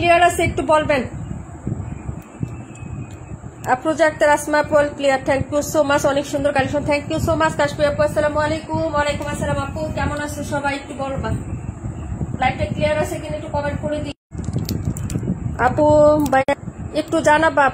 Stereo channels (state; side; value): identical; both; correlation 1.00